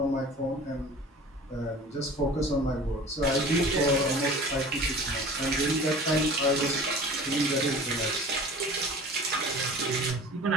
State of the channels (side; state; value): both; normal; correlation 0.41